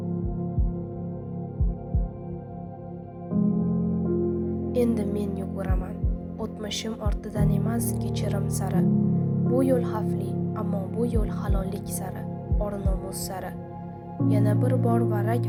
Endi men yuguraman. O'tmishim ortidan emas, kechirim sari. Bu yo'l xavfli, ammo bu yo'l halollik sari, or-nomus sari. Yana bir bor varrak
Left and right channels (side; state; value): both; identical; correlation 1.00